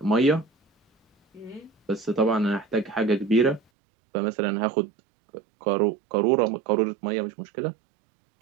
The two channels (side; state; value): left; drops out; at 3.6 s